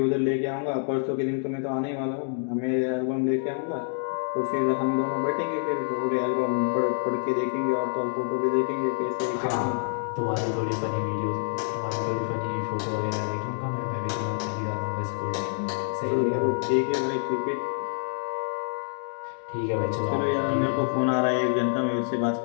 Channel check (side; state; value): right; silent; 60 dB below the other